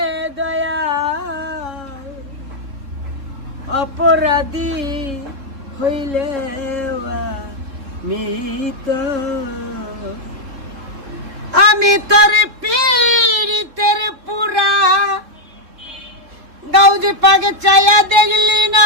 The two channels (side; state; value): left; late; 3.6 ms